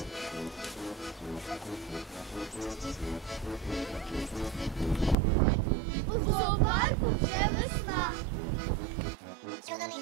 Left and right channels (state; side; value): drops out; left; at 5.2 s